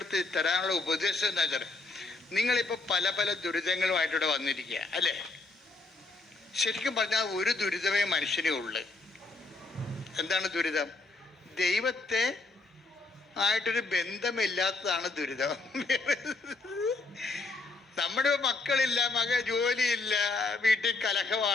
തരാനുള്ള ഉപദേശം എന്താ വെച്ചാൽ, നിങ്ങളിപ്പോൾ പല പല ദുരിതങ്ങളുമായിട്ടിവിടെ വന്നിരിക്കുക അല്ലേ? ശരിക്കും പറഞ്ഞാൽ ഒരു ദുരിതമേ മനുഷ്യനേ ഉള്ളു. എന്താണ് ദുരിതം? ദൈവത്തെ ആയിട്ടൊരു ബന്ധമില്ലാത്തതാണ് ദുരിതം. നമ്മുടെ മക്കളില്ല, ജോലിയില്ല, വീട്ടിൽ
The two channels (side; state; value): right; quieter; 3.5 dB